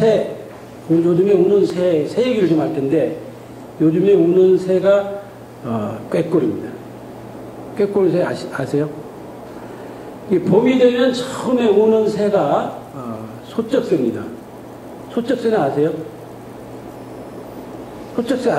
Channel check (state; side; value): identical; both; correlation 1.00